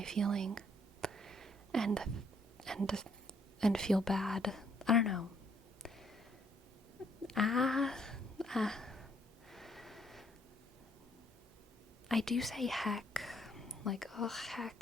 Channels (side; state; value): both; normal; correlation 0.67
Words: feeling and feel bad. I don't know. I do say heck. Ugh,